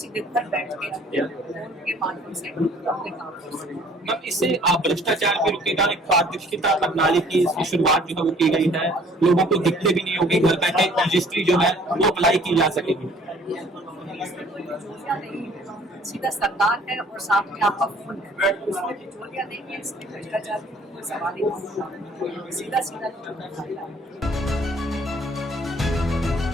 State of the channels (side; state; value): both; normal; correlation 0.56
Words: घर बैठ के माध्यम से अपने काम कर सकते हैं। मैम, इससे भ्रष्टाचार भी रुकेगा, एक पारदर्शिता प्रणाली की शुरुआत जो है वो की गई है, लोगों को दिक्कत भी नहीं होगी, घर बैठे रजिस्ट्री जो है वो अप्लाई की जा सकेगी। सीधा सरकार है और साथ में आपका फोन है, उसमें बिचौलिया नहीं है, इसमें भ्रष्टाचार की कोई सवाल ही नहीं, सीधा